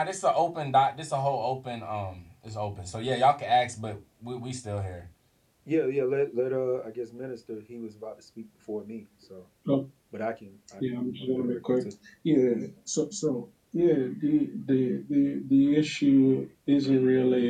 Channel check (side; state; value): both; identical; correlation 1.00